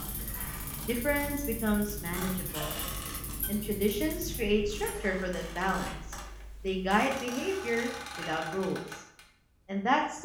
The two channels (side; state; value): both; identical; correlation 1.00